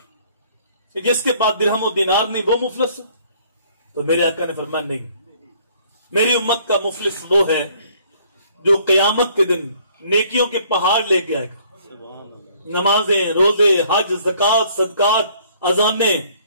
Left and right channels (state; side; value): inverted; both; correlation -0.61